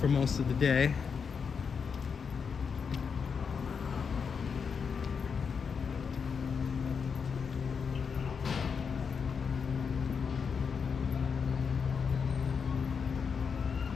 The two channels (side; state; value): right; quieter; 6.1 dB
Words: most of the day.